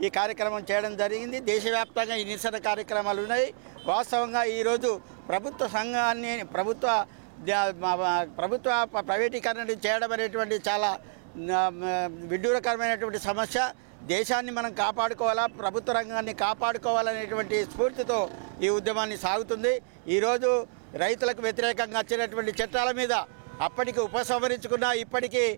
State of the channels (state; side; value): silent; left; digital silence